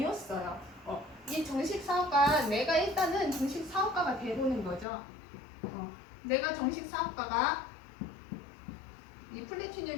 이 정식 사업가, 내가 일단은 정식 사업가가 되고는 거죠. 내가 정식 사업가가 이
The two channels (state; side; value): drops out; right; at 4.9 s